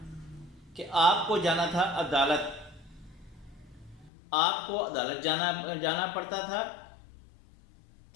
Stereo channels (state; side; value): drops out; right; at 4.1 s